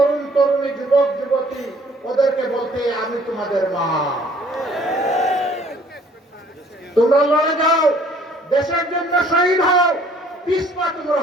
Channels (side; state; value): both; normal; correlation 0.58